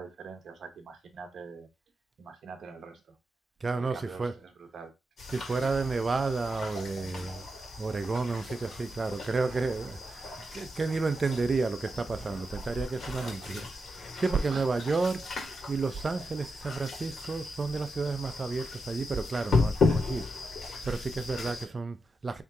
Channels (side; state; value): both; normal; correlation 0.87